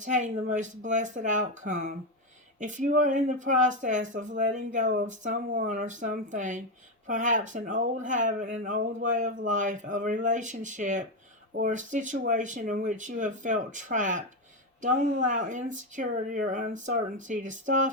the most blessed outcome. If you are in the process of letting go of someone or something, perhaps an old habit, an old way of life, a relationship, or a situation in which you have felt trapped, don't allow insecurity or uncertainty to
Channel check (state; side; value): normal; both; correlation 0.10